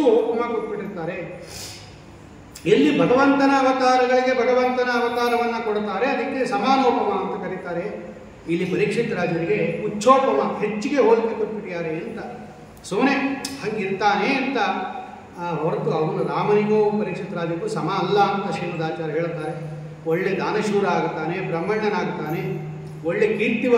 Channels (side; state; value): both; identical; correlation 1.00